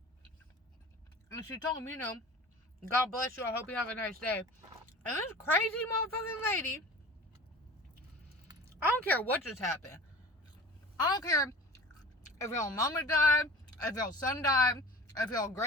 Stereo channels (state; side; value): normal; both; correlation 0.39